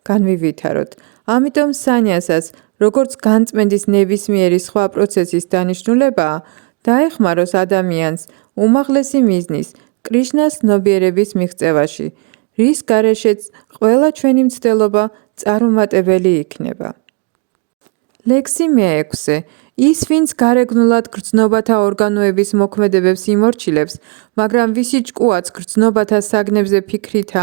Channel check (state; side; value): quieter; left; 29.9 dB